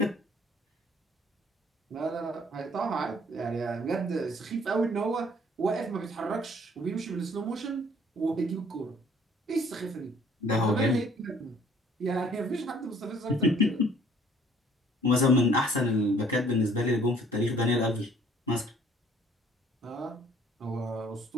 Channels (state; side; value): normal; both; correlation 0.58